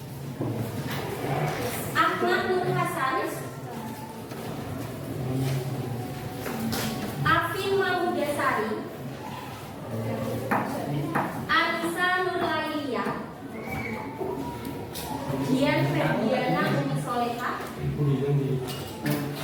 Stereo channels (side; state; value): both; identical; correlation 1.00